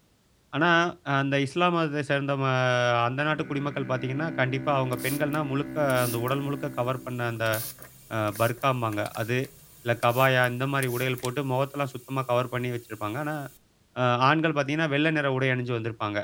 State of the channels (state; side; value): identical; both; correlation 1.00